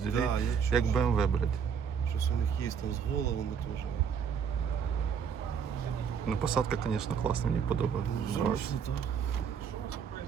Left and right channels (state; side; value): quieter; left; 7.1 dB